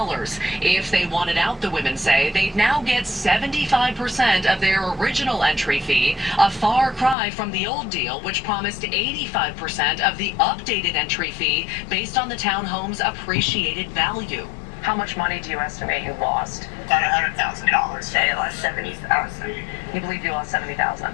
If they wanted out, the women say, they'd now get 75% of their original entry fee, a far cry from the old deal, which promised 85% of the updated entry fee based on the townhome's appreciated value. How much money do you estimate you lost? About $100,000. Say I lost $70,000. You believe you lost $70,000?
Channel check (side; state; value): right; drops out; at 7.2 s